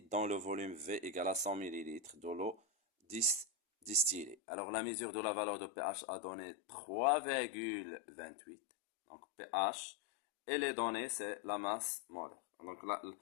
dans le volume V égale à 100 ml de l'eau distillée. Alors la mesure de la valeur de pH a donné 3,28. Donc pH et les données c'est la masse molaire. Donc là,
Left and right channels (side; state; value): right; drops out; at 4.4 s